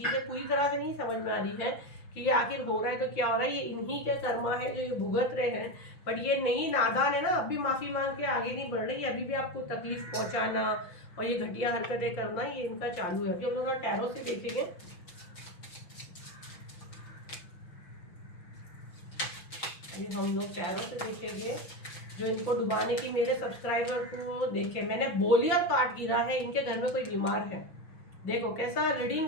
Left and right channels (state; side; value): late; right; 6.1 ms